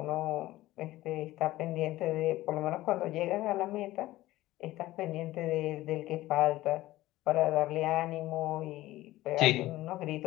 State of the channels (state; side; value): quieter; right; 16.7 dB